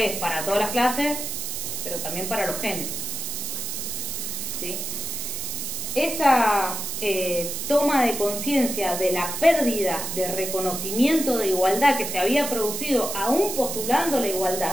para todas las clases, pero también para los géneros, ¿sí? Esa toma de conciencia de la pérdida de reconocimiento de igualdad que se había producido aún postulando la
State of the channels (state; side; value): noise; right; hiss, 4 dB below the sound